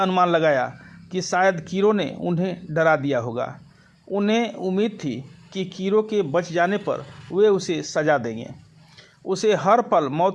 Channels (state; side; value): identical; both; correlation 1.00